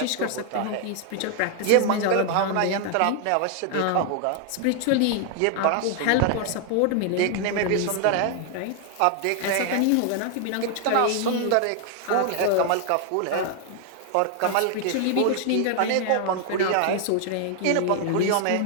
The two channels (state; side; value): different; both; correlation 0.00